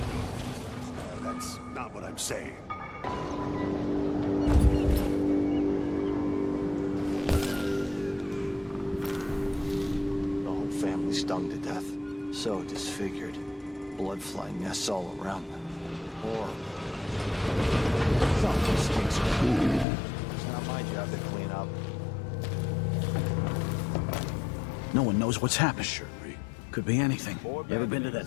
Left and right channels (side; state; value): right; drops out; at 19.9 s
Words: That's not what I'm saying. The whole family stung to death. So disfigured. Blood flying nests all around them. Horrible. Something stinks. It's not my job to clean up. No one knows what's happened. Could be anything. You ever been to that